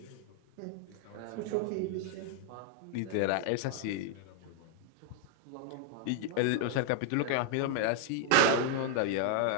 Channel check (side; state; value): both; different; correlation 0.00